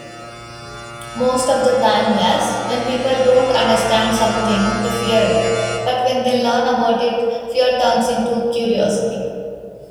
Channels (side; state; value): both; identical; correlation 1.00